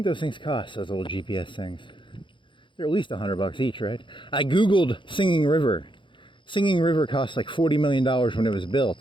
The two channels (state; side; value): late; right; 0.24 ms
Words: those things cost, those little GPS things? They're at least $100 each, right? I Googled Singing River. Singing River cost like $40 million when it was